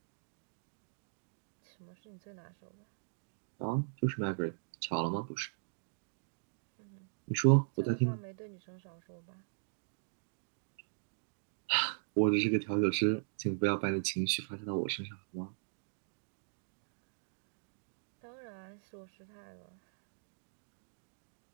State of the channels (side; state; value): left; silent; digital silence